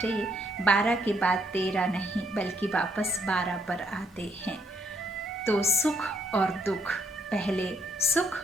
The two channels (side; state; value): both; normal; correlation 0.71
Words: 12 के बाद 13 नहीं बल्कि वापस 12 पर आते हैं, तो सुख और दुख, पहले